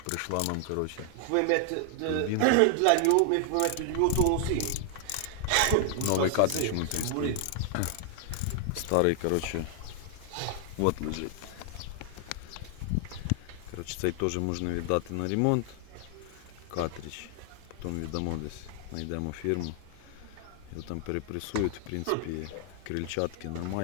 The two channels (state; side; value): different; both; correlation 0.00